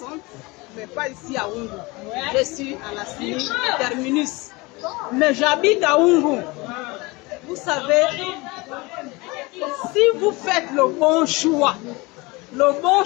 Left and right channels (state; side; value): quieter; right; 24.2 dB